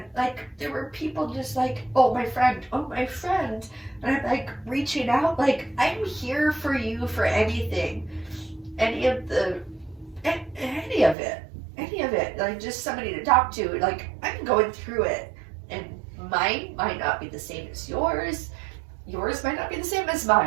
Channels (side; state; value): left; drops out; at 11.2 s